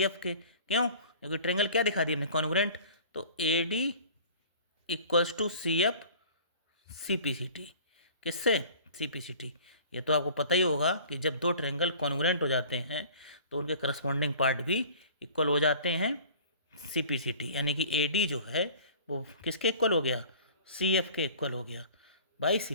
एफ के। क्यों, क्योंकि ट्रायंगल क्या दिखा दिया हमने, कॉन्ग्रुएंट। तो A D equals to C F C P C T, किससे, सी पी सी टी। ये तो आपको पता ही होगा कि जब 2 ट्रायंगल कॉन्ग्रुएंट हो जाते हैं तो उनके करस्पॉन्डिंग पार्ट भी इक्वल हो जाते हैं, सी पी सी टी, यानी कि ए डी जो है वो किसके इक्वल हो गया, सी एफ के इक्वल हो गया by C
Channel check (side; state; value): both; inverted; correlation -0.46